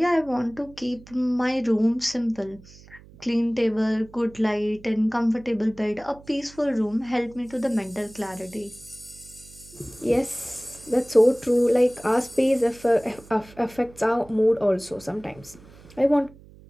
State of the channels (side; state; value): right; noise; hum, 22 dB below the sound